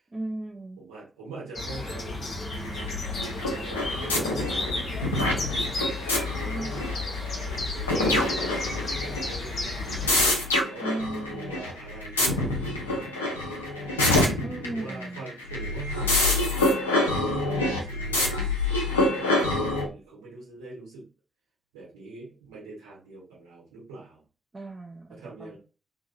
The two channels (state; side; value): normal; both; correlation 0.37